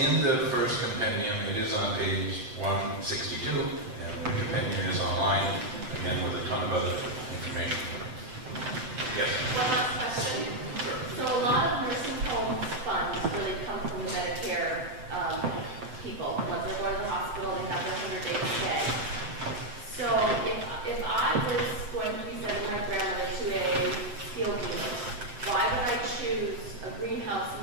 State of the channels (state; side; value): late; left; 7.7 ms